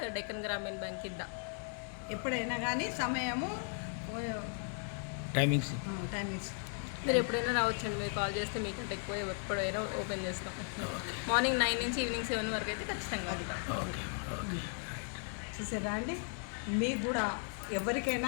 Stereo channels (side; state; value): right; silent; 54 dB below the other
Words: డెక్కన్ గ్రామీణ బ్యాంక్ కింద. ఎప్పుడైనా కానీ సమయము టైమింగ్స్ మీరు ఎప్పుడైనా రావచ్చండి. మీరు కాల్ చేస్తే మీకంటే ఎక్కువ ఎప్పుడైనా ఓపెన్ చేస్తాం. మార్నింగ్ 9 నుంచి ఈవినింగ్ 7 వరకు అయితే ఖచ్చితంగా ఉంటాం. చూసారా అండి, మీకు కూడా ఎవరికైనా